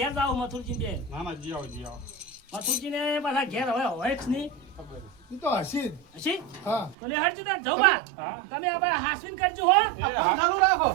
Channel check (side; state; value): left; drops out; at 7.0 s